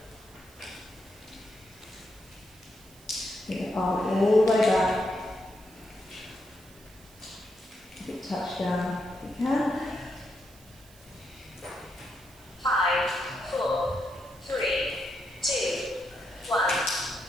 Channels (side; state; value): right; noise; hiss, 24 dB below the sound